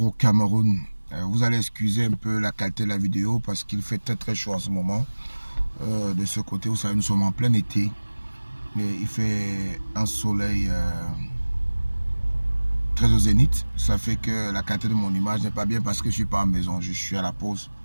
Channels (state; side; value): inverted; both; correlation -1.00